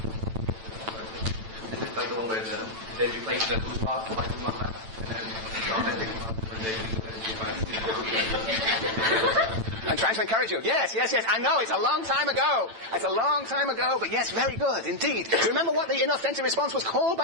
It's like the one where they replace the bourgeois with white bourgeois class, and then the authentic when they I'm trying to encourage you. Yes. I know, it's a long time ago. But yes, very good, indeed. Do you remember what the inauthentic response was called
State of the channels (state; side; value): late; left; 9.0 ms